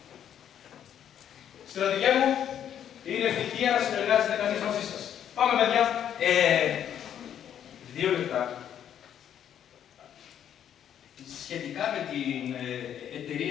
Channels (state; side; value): quieter; right; 9.7 dB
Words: Στρατηγέ μου, είναι ευτυχία να συνεργάζεται κανείς μαζί σας. Πάμε, παιδιά. 2 λεπτά. Σχετικά με την